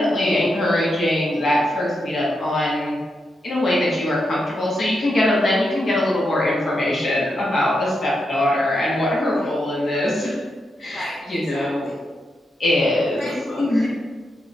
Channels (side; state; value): both; normal; correlation 0.84